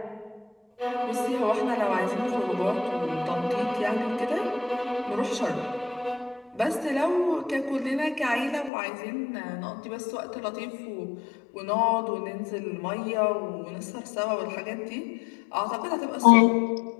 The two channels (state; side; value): drops out; right; at 8.7 s